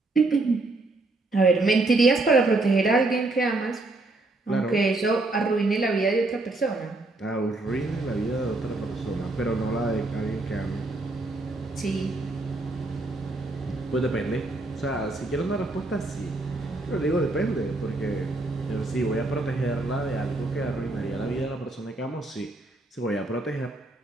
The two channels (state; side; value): quieter; left; 3.0 dB